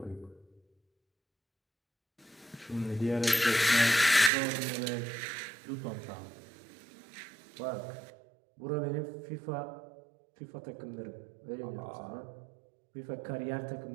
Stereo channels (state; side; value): drops out; left; at 4.3 s